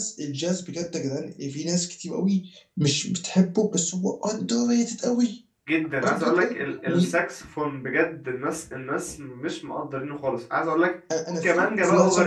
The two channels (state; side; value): identical; both; correlation 1.00